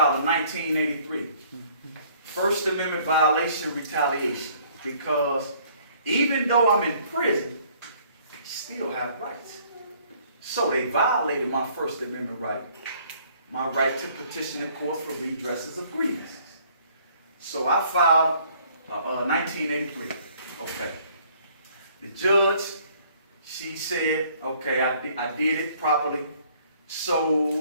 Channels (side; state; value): both; inverted; correlation -0.60